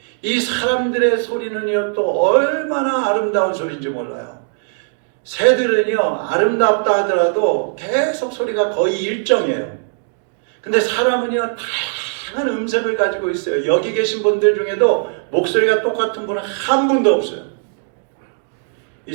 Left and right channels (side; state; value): left; silent; digital silence